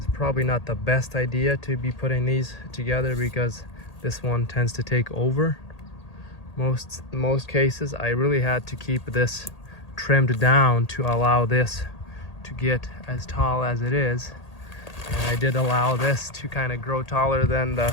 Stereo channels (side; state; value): right; late; 1.8 ms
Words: probably not the best idea to be putting these together because this one tends to take over. Most cases I really had to keep this trimmed down to allow this to get as tall as it is, and I did allow this to kind of grow taller than